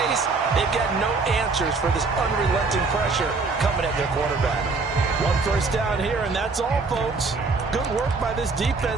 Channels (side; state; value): left; quieter; 4.1 dB